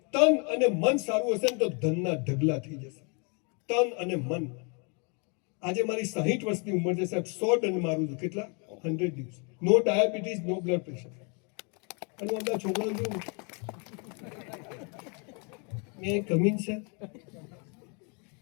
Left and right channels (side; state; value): right; quieter; 35.3 dB